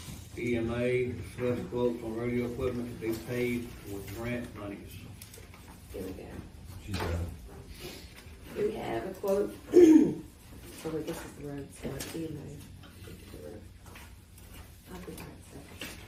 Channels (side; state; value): both; identical; correlation 1.00